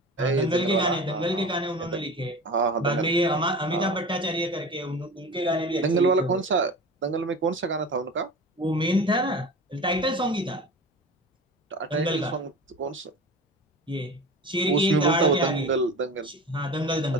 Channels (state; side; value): normal; both; correlation 0.34